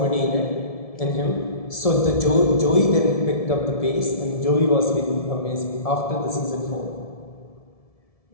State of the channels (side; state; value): right; late; 1.7 ms